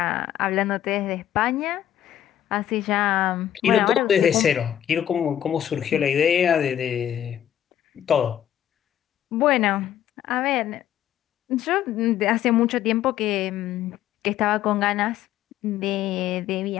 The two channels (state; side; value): quieter; right; 11.0 dB